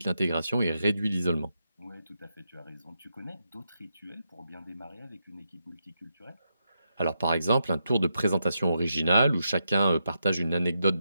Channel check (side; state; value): both; inverted; correlation -0.84